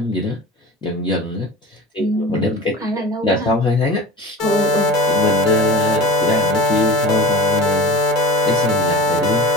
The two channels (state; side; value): normal; both; correlation 0.33